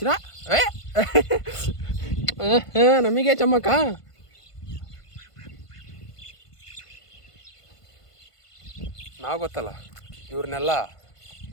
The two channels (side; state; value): right; late; 1.5 ms